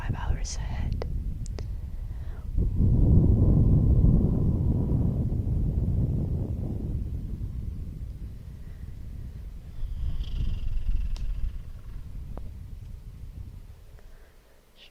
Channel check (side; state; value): both; identical; correlation 1.00